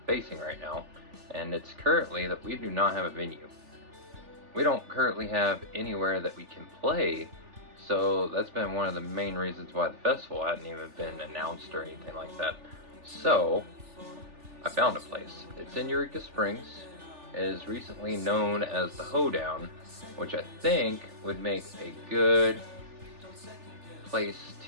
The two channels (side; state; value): left; late; 3.4 ms